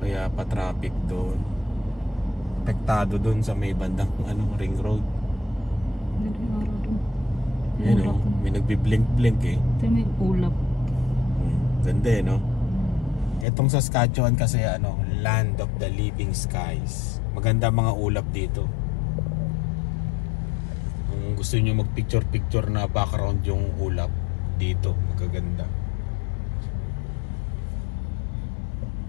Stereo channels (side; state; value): right; drops out; at 13.5 s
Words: Kaya pa traffic doon. Apektado doon sa may bandang ring road. Hindi na yung araw doon. Yan o. May nagbiblink-blink eh. Ito may ulap. Ganda eh, no? Etong Saskatchewan kasi ano, land of the living skies. Maganda mga ulap dito. Kung gusto niyo mag-picture na background yung ulap dito, magaganda.